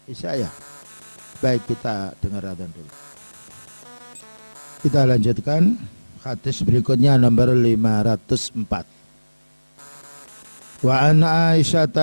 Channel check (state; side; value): inverted; both; correlation -1.00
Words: Bisa ya? Baik, kita dengar adzan dulu. Kita lanjutkan hadis berikutnya nomor 504. Wa an Aisyah